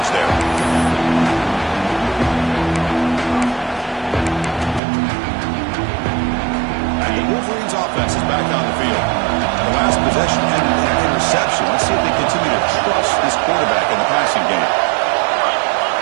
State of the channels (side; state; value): left; drops out; at 4.8 s